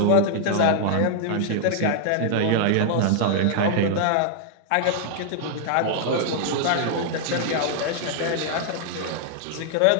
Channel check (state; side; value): different; both; correlation -0.01